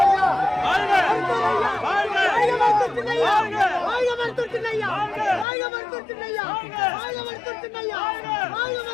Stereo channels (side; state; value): right; drops out; at 5.5 s